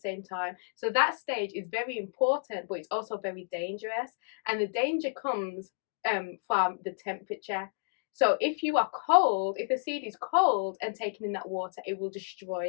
time. So that stage is very important, but it's also very dangerous. And the danger comes from the temperature. So if you are cold, if the seed is cold and taken in that water, it will destroy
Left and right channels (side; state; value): right; silent; digital silence